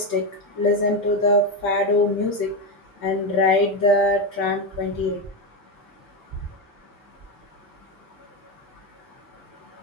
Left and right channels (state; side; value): normal; both; correlation 0.12